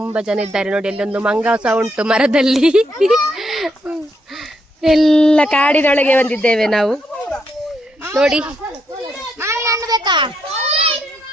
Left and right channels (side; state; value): both; normal; correlation 0.78